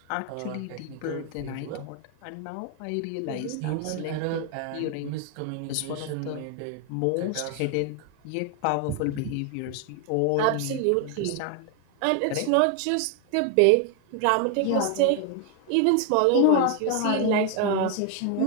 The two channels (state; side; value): different; both; correlation 0.01